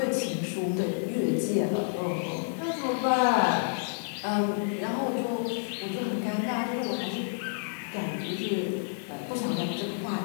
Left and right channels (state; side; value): silent; right; digital silence